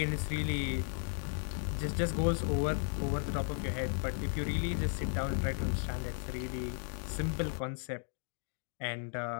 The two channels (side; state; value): right; silent; 54 dB below the other